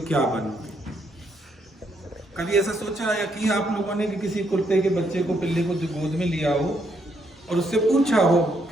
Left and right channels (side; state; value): both; normal; correlation 0.74